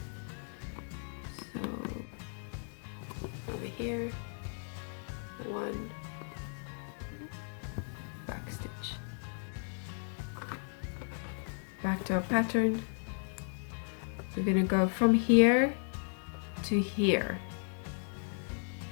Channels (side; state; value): right; silent; 54 dB below the other